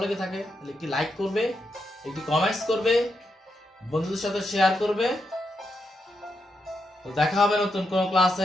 লেগে থাকে তাহলে একটি লাইক করবে, একটি কমেন্টস করবে, বন্ধুদের সাথে শেয়ার করবে। তো দেখা হবে নতুন কোনো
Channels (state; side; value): normal; both; correlation 0.83